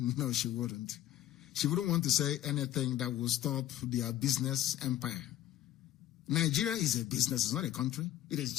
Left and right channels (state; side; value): quieter; right; 13.1 dB